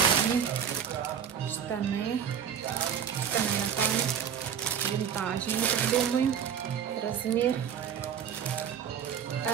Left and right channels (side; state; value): left; quieter; 8.2 dB